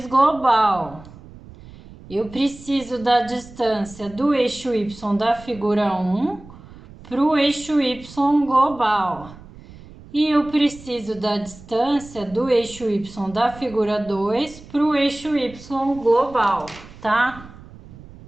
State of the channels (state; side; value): noise; right; rumble, 19 dB below the sound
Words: global. Eu preciso da distância do eixo Y da figura 1 para o eixo Y global. E eu preciso da distância do eixo Y da figura 2 para o eixo Y global, tá?